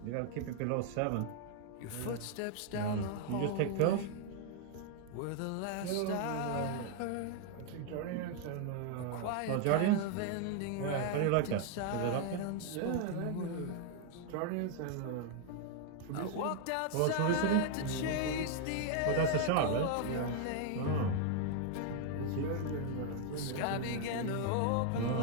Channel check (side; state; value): both; different; correlation 0.00